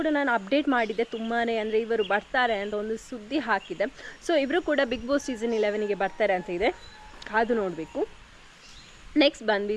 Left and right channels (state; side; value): identical; both; correlation 1.00